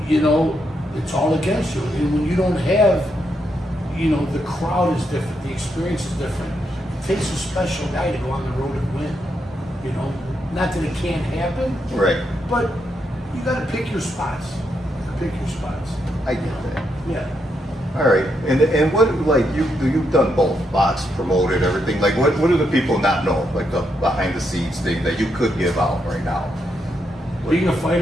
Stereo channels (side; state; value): both; normal; correlation 0.80